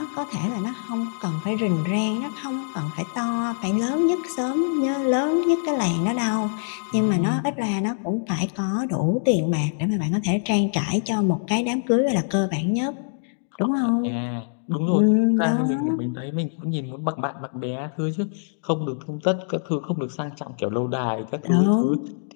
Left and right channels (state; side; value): silent; right; digital silence